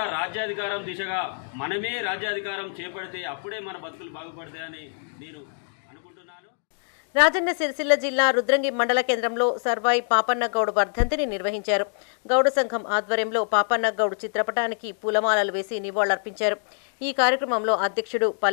రాజ్యాధికారం దిశగా మనమే రాజ్యాధికారం చేపడితే అప్పుడే మన బతుకులు బాగుపడతాయని నేను అనుకుంటున్నాను. రాజన్న సిరిసిల్ల జిల్లా రుద్రంగి మండల కేంద్రంలో సర్వాయి పాపన్న గౌడ్ వర్ధంతిని నిర్వహించారు. గౌడ సంఘం ఆధ్వర్యంలో పాపన్న గౌడ్ చిత్రపటానికి పూలమాలలు వేసి నివాళులర్పించారు. ఈ కార్యక్రమంలో అధ్యక్షుడు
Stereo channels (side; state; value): right; silent; digital silence